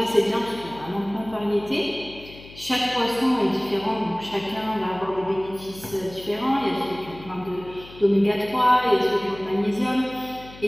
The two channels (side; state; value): left; noise; hum, 19 dB below the sound